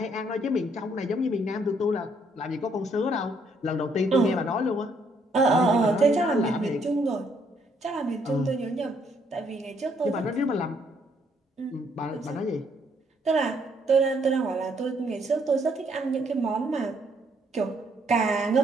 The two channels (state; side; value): normal; both; correlation 0.70